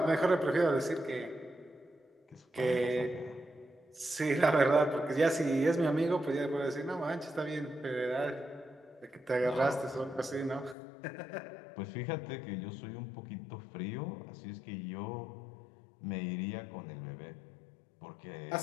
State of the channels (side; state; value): right; drops out; at 10.8 s